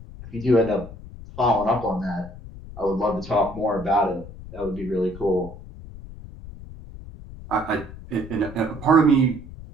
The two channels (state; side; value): noise; left; rumble, 14 dB below the sound